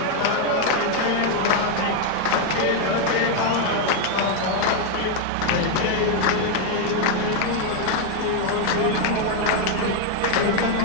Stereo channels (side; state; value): both; different; correlation 0.01